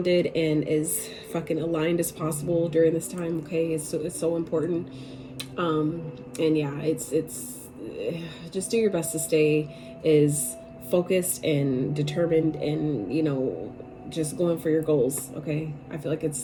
and as fucking aligned as possible during this time. Okay, it's so important. And yeah, it's just do your best to stay as focused and determined, and you know, just going for your goals. Okay, I feel like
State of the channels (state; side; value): identical; both; correlation 1.00